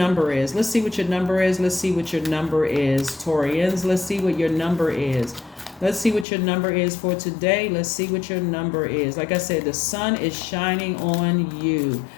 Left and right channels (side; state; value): right; drops out; at 6.2 s